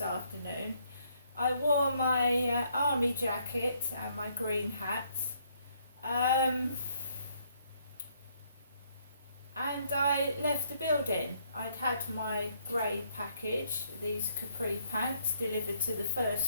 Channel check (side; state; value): both; inverted; correlation -0.70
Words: I wore my army jacket and my green hat, and I left the building. I'd had my grey package, these capri pants, delivered to the